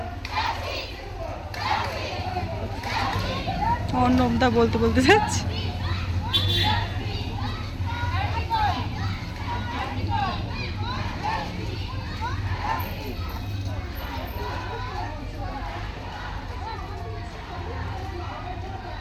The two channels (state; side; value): identical; both; correlation 1.00